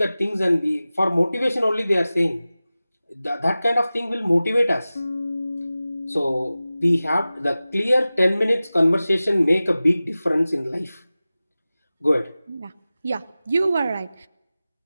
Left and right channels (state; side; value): inverted; both; correlation -0.96